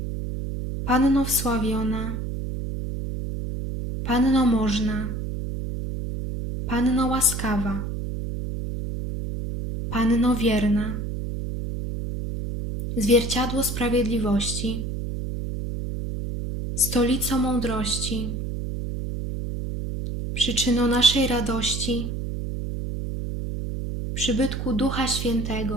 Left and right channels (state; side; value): noise; right; hum, 4 dB below the sound